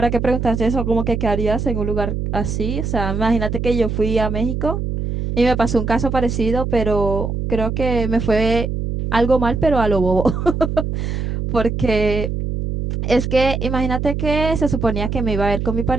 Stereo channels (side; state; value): right; noise; hum, 2 dB below the sound